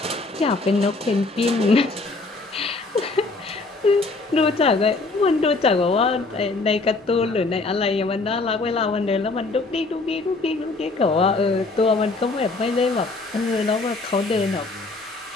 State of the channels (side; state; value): right; quieter; 3.5 dB